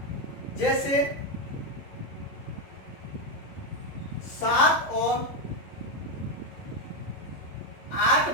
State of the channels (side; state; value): right; late; 11 ms